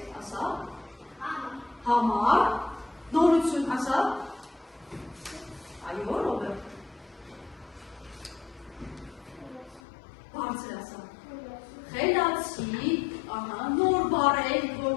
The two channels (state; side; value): drops out; right; at 9.8 s